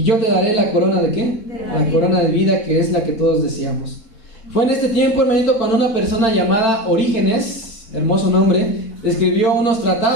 yo te daré la corona ¿de qué? La corona de vida, que es la que todos deseamos. Fue en este tiempo, hermanito, cuando una persona llamada Orígenes, hermoso nombre, escribió unos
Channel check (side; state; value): right; late; 4.5 ms